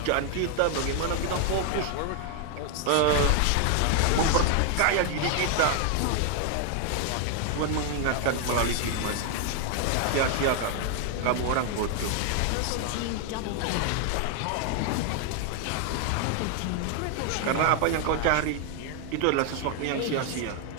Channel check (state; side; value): different; both; correlation 0.00